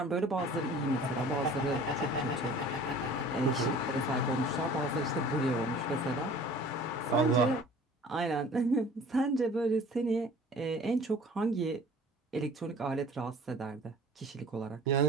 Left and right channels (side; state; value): both; normal; correlation 0.47